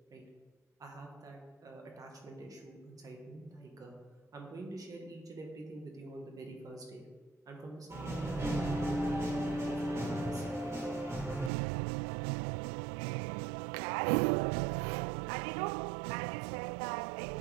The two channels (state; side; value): drops out; left; at 11.5 s